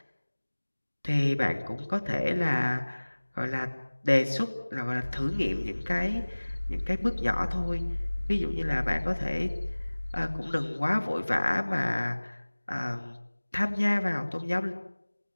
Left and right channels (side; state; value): both; inverted; correlation -1.00